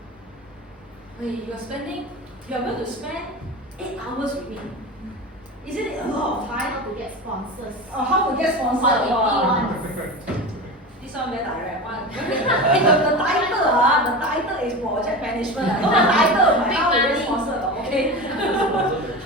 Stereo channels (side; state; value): both; normal; correlation 0.27